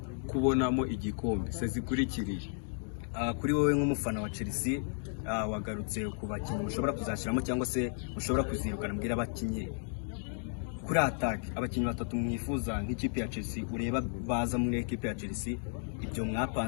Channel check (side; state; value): right; silent; 55 dB below the other